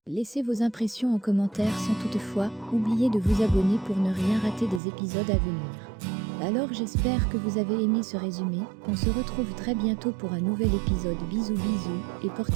Laissez vos impressions en commentaire sans toutefois oublier de vous abonner pour ne rien rater des épisodes à venir. Alors j'espère que vous avez aimé ce résumé, on se retrouve très bientôt pour un nouvel épisode. Bisous bisous et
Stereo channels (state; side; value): drops out; left; at 4.8 s